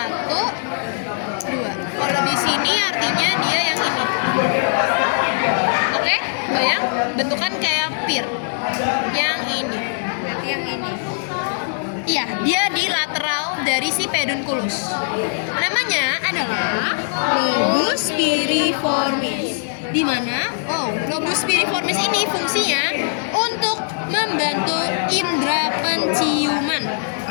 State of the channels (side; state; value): right; silent; digital silence